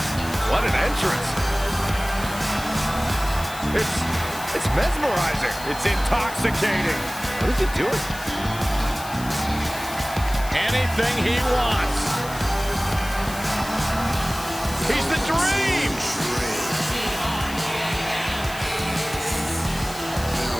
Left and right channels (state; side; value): noise; left; hiss, 14 dB below the sound